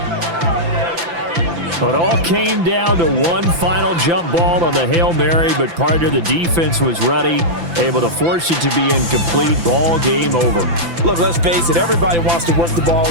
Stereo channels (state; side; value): late; left; 5.9 ms